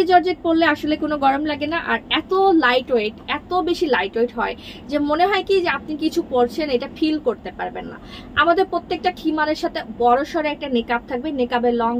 জর্জেট পরলে আসলে কোনো গরম লাগে না, আর এত লাইট ওয়েট, এত বেশি লাইট ওয়েট হয় যে মনে হয় কি যে আপনি কিছু পরছেন, এটা ফিল করতে পারবেন না। আমাদের প্রত্যেকটা খিমারের সাথে বড় সড়ো একটা নেকআপ থাকবে, নেকআপের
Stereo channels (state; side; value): identical; both; correlation 1.00